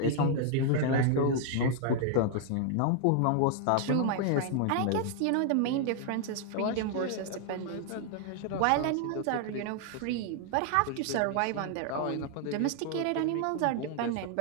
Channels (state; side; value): different; both; correlation 0.00